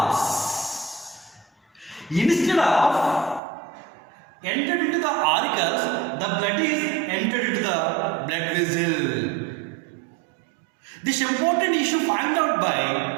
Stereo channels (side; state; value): left; drops out; at 3.4 s